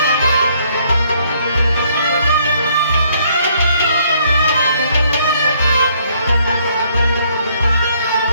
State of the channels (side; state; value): both; inverted; correlation -0.66